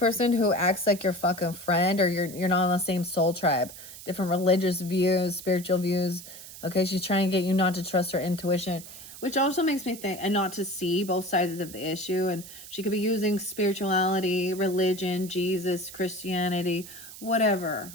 who acts like your fucking friend, or you're not on the same soul tribe, different religious views, spiritual views. Okay, she's trying to get you not to trust her intuition, which also makes me think, and not to see both sides of the issue. And she could be using spirituality, religion, Jesus, Christianity, whatever.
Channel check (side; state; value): right; noise; hiss, 15 dB below the sound